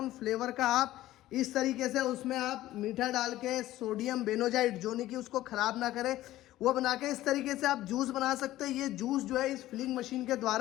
फ्लेवर का आप इस तरीके से उसमें आप मीठा डाल के सोडियम बेनोजाइड, जो नहीं कि उसको ख़राब ना करे, वो बना के इस तरीके से आप जूस बना सकते हैं। ये जूस जो है इस फिलिंग मशीन के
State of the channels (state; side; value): quieter; right; 15.2 dB